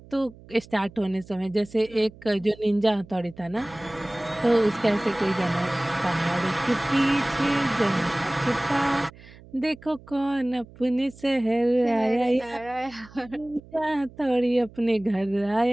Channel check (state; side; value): noise; right; hum, 21 dB below the sound